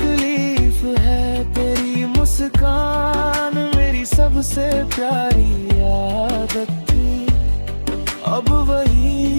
है। तेरी मुस्कान मेरी सबसे प्यारी आदत थी, अब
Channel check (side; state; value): both; inverted; correlation -1.00